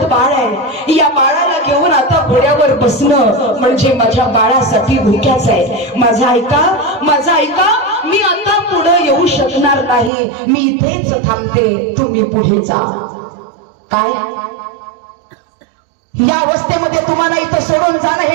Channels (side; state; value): left; drops out; at 10.1 s